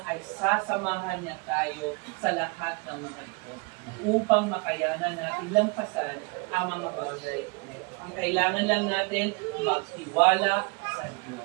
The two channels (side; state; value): left; quieter; 31.2 dB